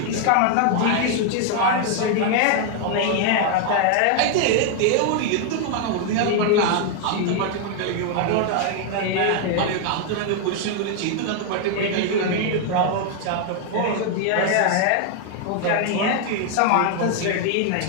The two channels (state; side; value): different; both; correlation 0.00